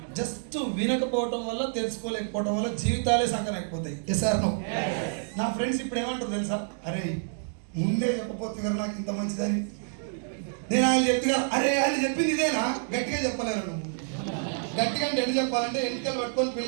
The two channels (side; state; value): left; silent; digital silence